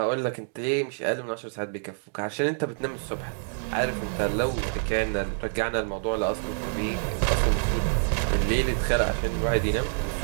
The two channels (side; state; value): left; silent; digital silence